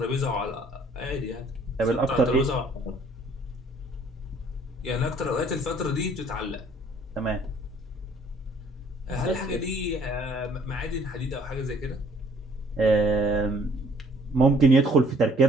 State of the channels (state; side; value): normal; both; correlation 0.59